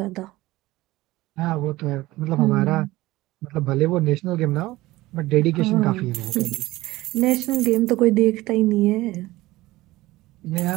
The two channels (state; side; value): quieter; left; 18.4 dB